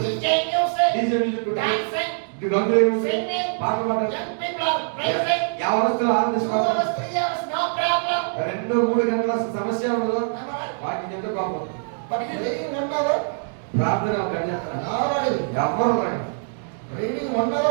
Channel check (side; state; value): left; silent; digital silence